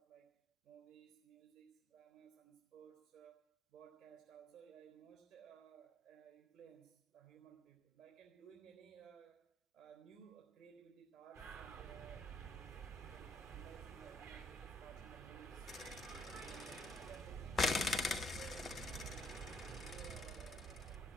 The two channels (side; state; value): both; normal; correlation 0.67